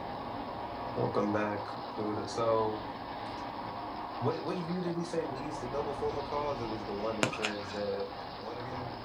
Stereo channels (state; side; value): identical; both; correlation 1.00